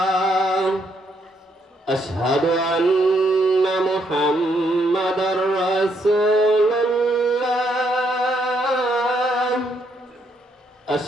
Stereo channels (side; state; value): both; normal; correlation 0.74